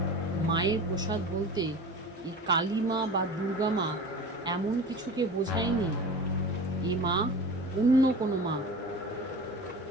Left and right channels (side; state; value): both; normal; correlation 0.35